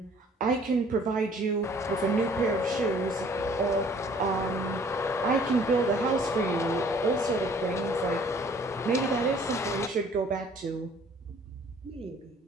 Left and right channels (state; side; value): normal; both; correlation 0.56